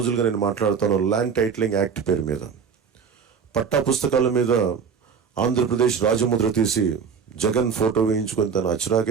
నేను మాట్లాడుతాను ల్యాండ్ టైటిలింగ్ యాక్ట్ పేరు మీద. పట్టా పుస్తకాల మీద ఆంధ్రప్రదేశ్ రాజముద్ర తీసి జగన్ ఫోటో వేయించుకొని తన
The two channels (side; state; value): left; quieter; 6.4 dB